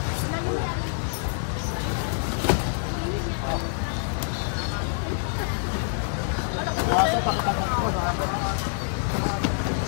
Kaso pakipagkat ko sa ako.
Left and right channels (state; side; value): silent; right; 61 dB below the other